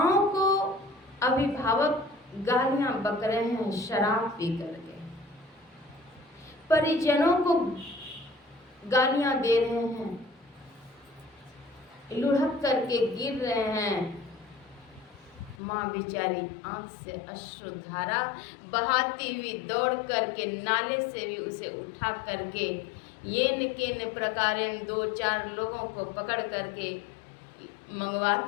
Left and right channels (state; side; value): drops out; right; at 15.6 s